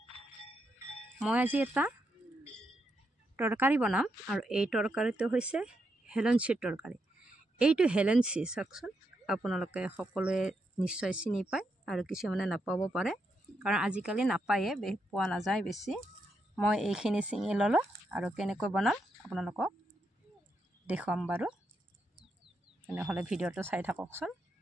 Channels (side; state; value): both; normal; correlation 0.82